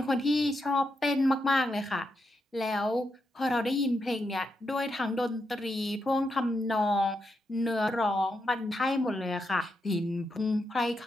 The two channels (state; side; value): normal; both; correlation 0.83